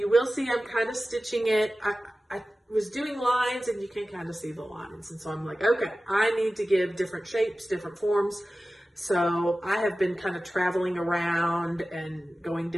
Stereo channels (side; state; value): both; normal; correlation 0.96